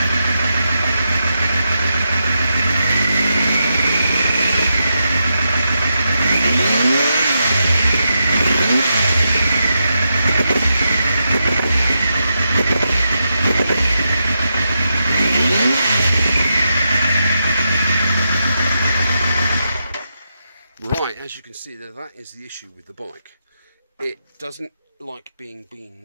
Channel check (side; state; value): both; inverted; correlation -0.85